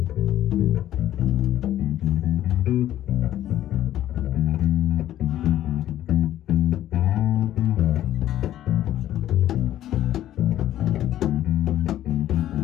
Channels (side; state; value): right; quieter; 12.6 dB